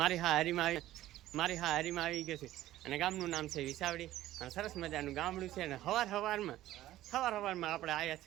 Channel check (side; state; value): left; quieter; 14.5 dB